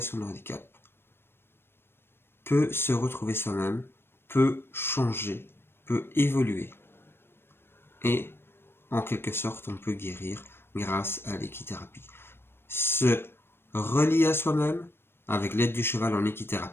de handicap, peut se retrouver soi-même, peut changer, peut évoluer. Et en quelque sorte, on peut guérir grâce à l'équithérapie. Se relier à soi-même, avec l'aide du cheval en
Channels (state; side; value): late; right; 0.11 ms